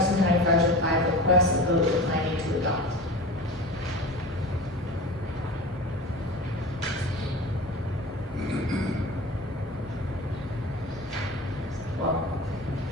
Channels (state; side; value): normal; both; correlation 0.33